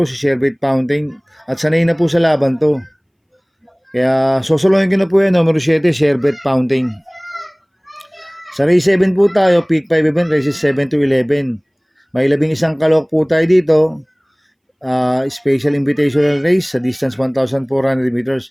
si Sherbet Fountain. At sanay na po sa laban to. Kaya, sosolohin ko na po yan, numero 7, Sherbet Fountain. Sa race 7 po tayo, pick 5 event, races 7 to 11. May 11 kalok po tayo dito. Special invitational race sa distance 1,400 meters.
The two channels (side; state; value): both; identical; correlation 1.00